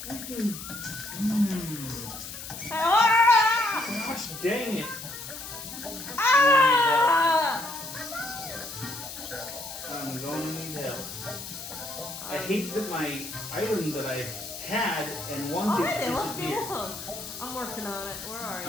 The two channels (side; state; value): left; noise; hiss, 10 dB below the sound